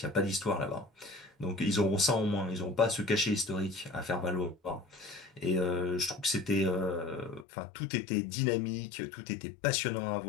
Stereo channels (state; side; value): drops out; right; at 7.5 s